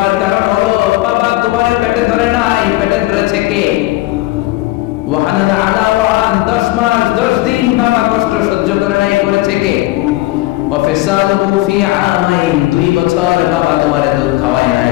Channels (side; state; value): right; quieter; 18.1 dB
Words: কারণ হলো বাবা তোমারে পেটে ধরে নাই, পেটে ধরেছে কে? ওয়াহানানা আলা ওয়াহান, 10 মাস 10 দিন বাবা কষ্ট সহ্য করে নাই, করেছে কে? ওয়াফিসালুহু ফি আমাইন, 2 বছর বাবা তোমারে দুধ খাওয়ায় নাই,